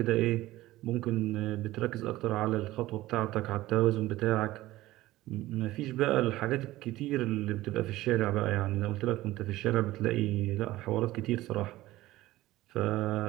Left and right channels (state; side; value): quieter; left; 16.9 dB